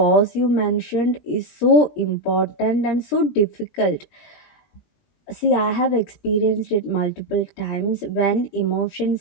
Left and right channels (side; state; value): right; late; 20 ms